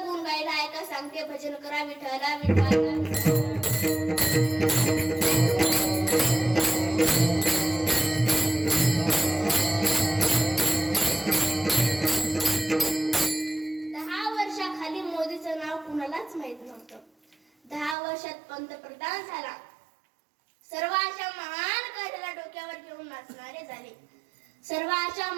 गुण गायलं ऐका सांगते. भजन करा विठ्ठला विठ्ठला. कुणालाच माहित नव्हतं. 10 वर्षात पंतप्रधान झाला. सर्व अशा महान कार्याला डोक्यावर घेऊन नाचणारे झाले. सर्व अशा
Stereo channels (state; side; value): drops out; left; at 17.9 s